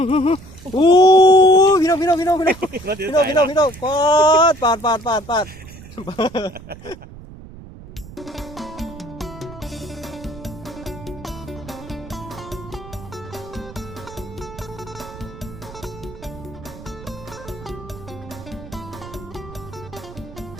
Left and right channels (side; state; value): right; noise; rumble, 16 dB below the sound